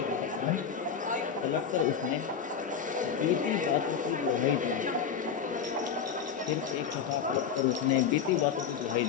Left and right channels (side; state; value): right; quieter; 7.1 dB